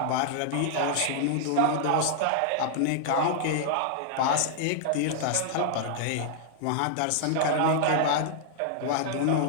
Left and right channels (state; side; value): different; both; correlation -0.01